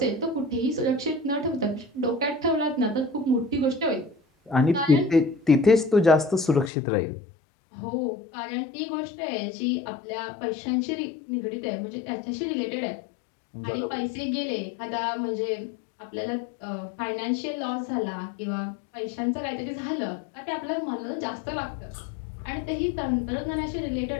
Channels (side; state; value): right; drops out; at 6.7 s